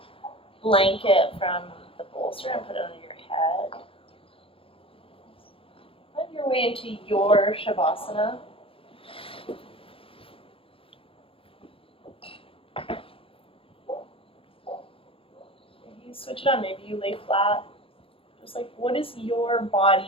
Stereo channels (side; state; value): right; late; 0.27 ms